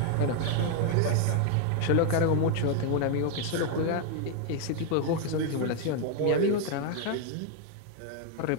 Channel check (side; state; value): both; different; correlation 0.00